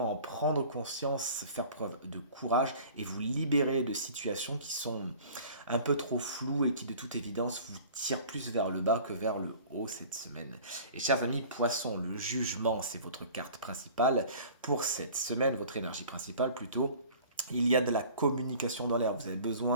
en prendre conscience, faire preuve de courage et vous libérer de situations qui sont un peu trop floues et qui de toute évidence vous tirent plus vers le bas que vers le haut cette semaine. Et chers amis poissons, le jugement c'est votre carte principale pour cette semaine, votre énergie principale plutôt. Il y a de la communication dans l'air. Vous avez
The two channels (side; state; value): both; inverted; correlation -0.46